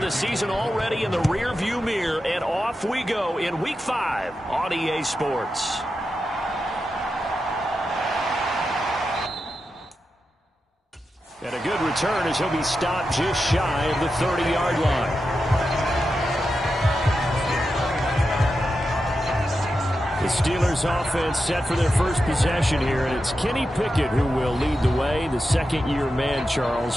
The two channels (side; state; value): both; normal; correlation 0.89